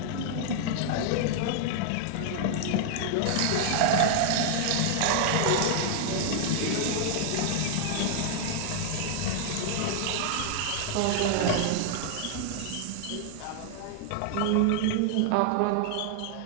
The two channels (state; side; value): different; both; correlation 0.00